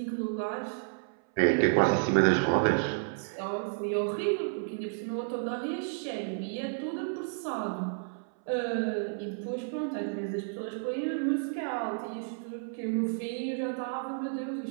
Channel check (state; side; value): silent; left; 57 dB below the other